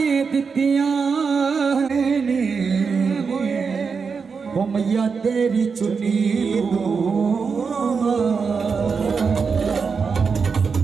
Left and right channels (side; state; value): left; quieter; 5.4 dB